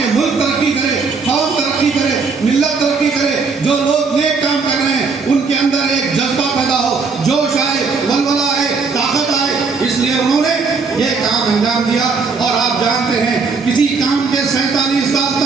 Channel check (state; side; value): quieter; left; 4.7 dB